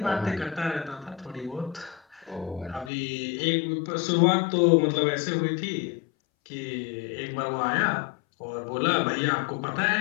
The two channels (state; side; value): drops out; right; at 2.9 s